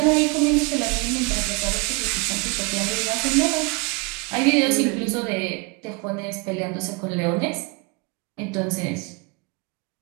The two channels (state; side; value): quieter; left; 29.0 dB